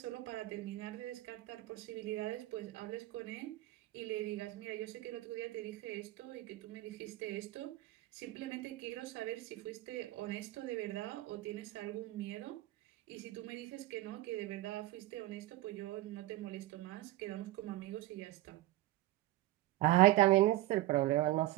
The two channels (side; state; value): left; quieter; 16.8 dB